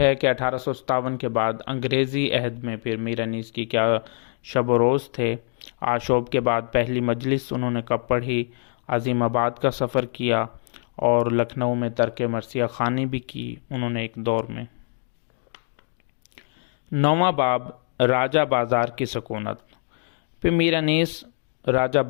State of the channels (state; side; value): silent; right; 58 dB below the other